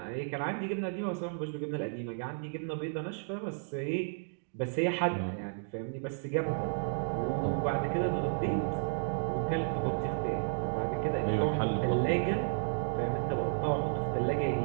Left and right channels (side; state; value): left; silent; digital silence